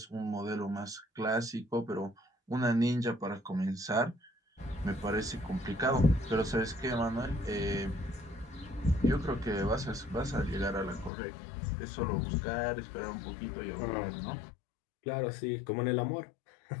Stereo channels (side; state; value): right; drops out; at 11.1 s